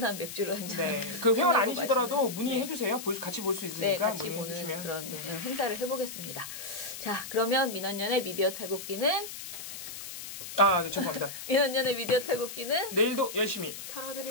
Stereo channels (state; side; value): noise; left; hiss, 10 dB below the sound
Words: 맥주를 한 잔. 그 회원 아니시더라도 문의해 주세요. 같이 볼 수 있으니까 같이 보는 그런 행사를 해보겠습니다. 자, 그러면 민원연의 미디어 탈곡기는 네, 죄송합니다. 민원연의 미디어 탈곡기는 내일도 열심히